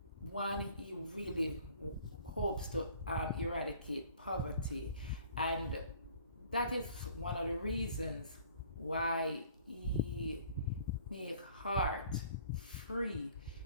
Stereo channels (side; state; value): both; inverted; correlation -0.53